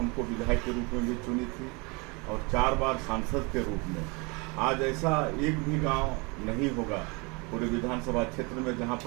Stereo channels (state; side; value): quieter; left; 29.2 dB